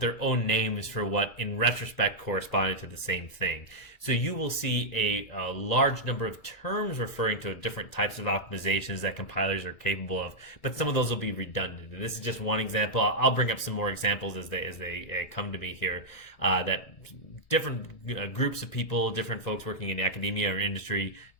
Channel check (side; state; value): right; late; 2.0 ms